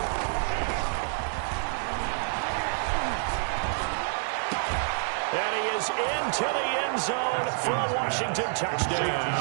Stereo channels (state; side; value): silent; left; digital silence